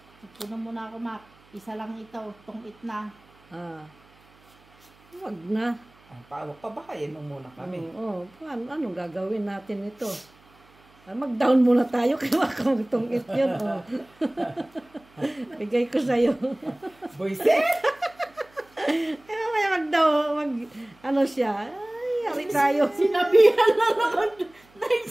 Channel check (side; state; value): right; noise; hum, 30 dB below the sound